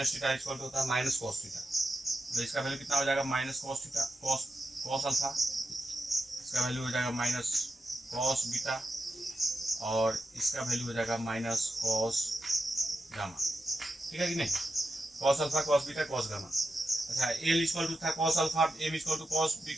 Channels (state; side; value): normal; both; correlation 0.88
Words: theta equal होता है माइनस कॉस थीटा, तो इसका वैल्यू कितना हो जाएगा minus cos theta cos alpha, इसका वैल्यू हो जाएगा माइनस कॉस बीटा, और इसका वैल्यू हो जाएगा माइनस कॉस गामा। ठीक है कि नहीं, cos alpha cos beta cos gamma. अच्छा एल इक्वल टू था cos alpha, M equal to cos